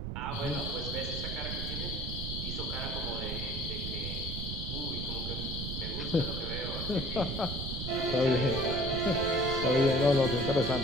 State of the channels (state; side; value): noise; right; rumble, 5 dB below the sound